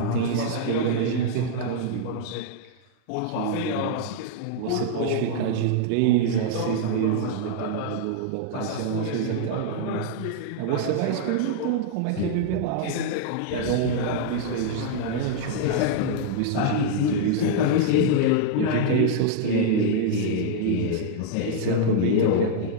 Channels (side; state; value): both; different; correlation -0.01